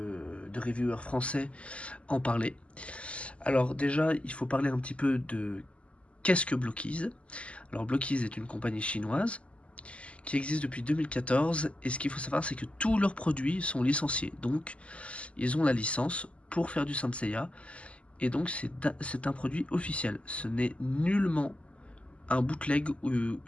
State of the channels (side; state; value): right; late; 0.059 ms